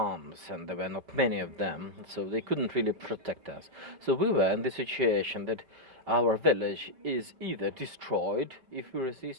and there were not many of them, so they couldn't really protect us. So we were in the situation that our village is either destroyed if we resist,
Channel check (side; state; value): left; late; 5.1 ms